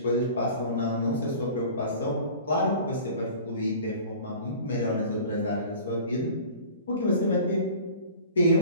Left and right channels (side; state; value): both; inverted; correlation -0.43